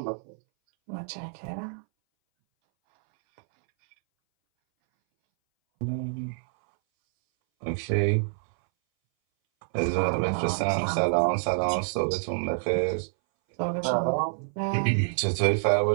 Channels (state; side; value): silent; left; 60 dB below the other